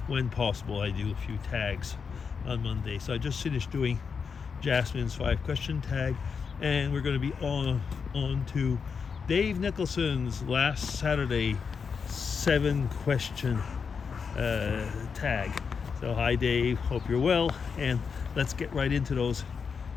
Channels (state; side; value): quieter; right; 5.9 dB